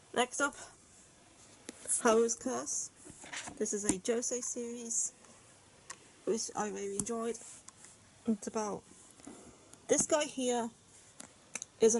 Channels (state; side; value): identical; both; correlation 1.00